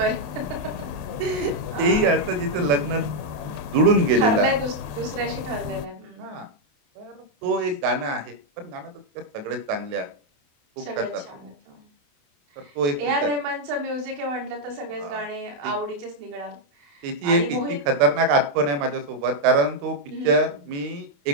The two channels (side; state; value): left; late; 28 ms